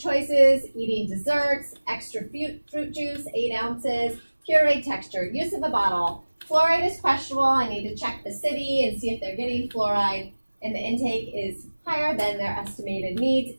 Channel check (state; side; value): inverted; both; correlation -1.00